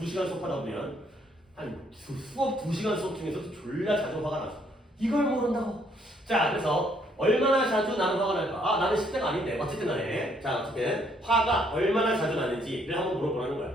2시간 수업하다 보면 수업 2시간 수업 중에서도 졸라 자주 화가 나죠. 이걸 모른다고. 자, 그래서 얼마나 자주 나는 화가 날까? 아, 나는 10대가 아닌데. 어쨌든 간에. 자, 어쨌든 화가 얼마나 자주 나는지를 한번 물어보라는 거야.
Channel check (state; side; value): normal; both; correlation 0.68